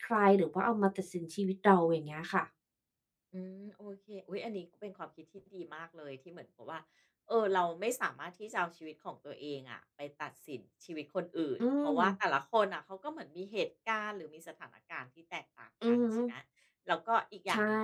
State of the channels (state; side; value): identical; both; correlation 1.00